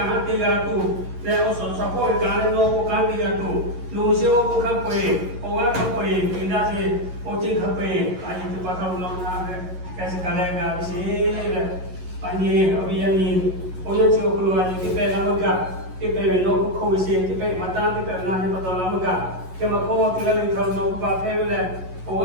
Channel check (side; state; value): left; late; 11 ms